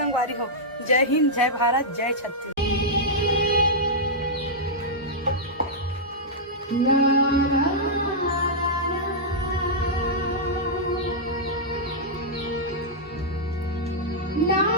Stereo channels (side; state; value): both; normal; correlation -0.09